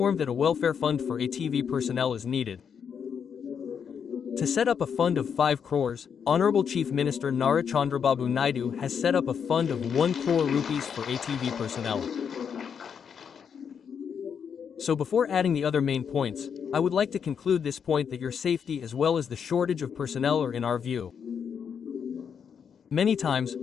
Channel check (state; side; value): quieter; right; 7.2 dB